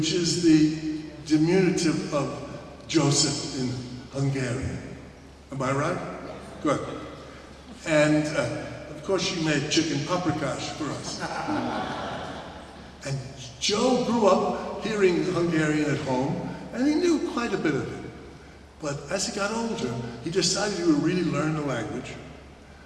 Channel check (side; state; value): both; identical; correlation 1.00